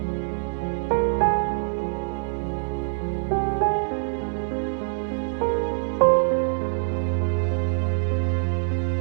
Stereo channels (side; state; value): left; silent; 56 dB below the other